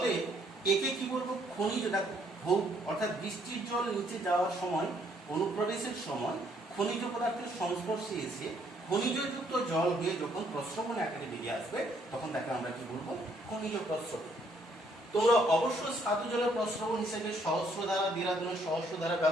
একে কি বলবো, খনিজ। দেখো অর্থাৎ বৃষ্টির জল নিচে যাওয়ার সময়, অনুপ্রবেশের সময় খনিজ পদার্থের সংস্পর্শে এসে খনিজযুক্ত জল হয়ে যখন প্রস্রবণ আকারে বেরিয়ে আসবে, তখন তাকে আমরা কি বলবো, খনিজ প্রস্রবণ। তোমরা অবশ্যই স্বাদু জলের প্রস্রবণ হিসেবে সহস্রধারা, দেরাদুনের সহস্রধারা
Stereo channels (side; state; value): both; normal; correlation 0.68